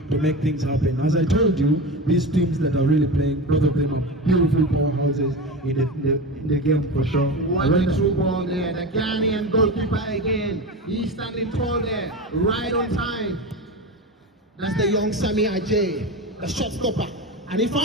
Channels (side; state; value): both; normal; correlation 0.24